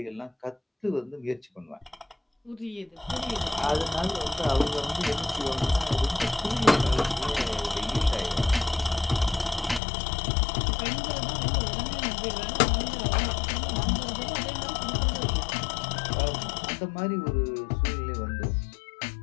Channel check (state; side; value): drops out; right; at 9.8 s